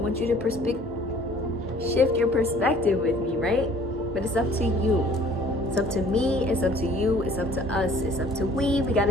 you to shift your perspective with me, right? But it's up to you. It's up to me, it's up to you, it's up to us, it's up to we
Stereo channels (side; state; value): both; normal; correlation 0.53